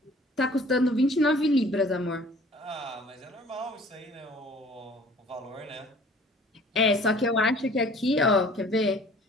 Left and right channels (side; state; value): both; normal; correlation 0.51